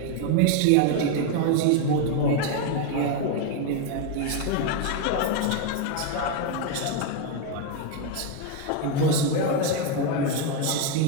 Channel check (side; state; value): both; different; correlation 0.02